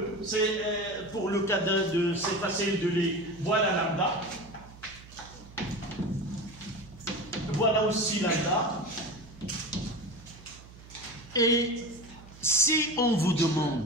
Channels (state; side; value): noise; right; hum, 20 dB below the sound